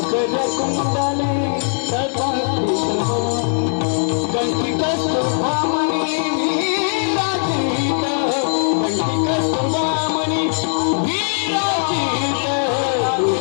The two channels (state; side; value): silent; right; 66 dB below the other